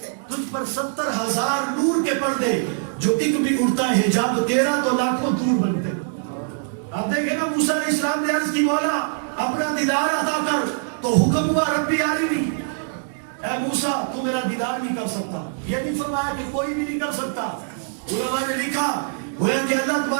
تجھ پر 70,000 نور کے پردے، جو ایک بھی اڑتا ہے حجاب تیرا تو لاکھوں دور بنتے. آپ دیکھیں نا موسیٰ علیہ السلام نے عرض کی مولا اپنا دیدار عطا کر، تو حکم ہوا ربی عالمی، اے موسیٰ تو میرا دیدار نہیں کر سکتا. یہ نہیں فرمایا کہ کوئی بھی نہیں کر سکتا. علماء نے لکھا گویا کہ اللہ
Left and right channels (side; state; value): left; silent; digital silence